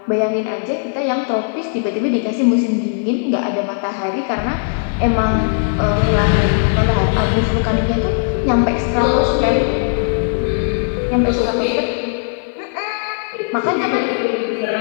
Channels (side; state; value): right; silent; digital silence